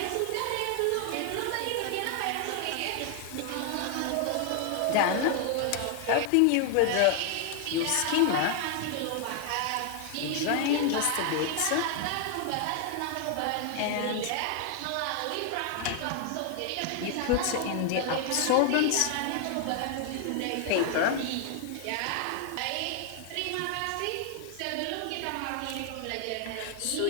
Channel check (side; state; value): both; different; correlation 0.00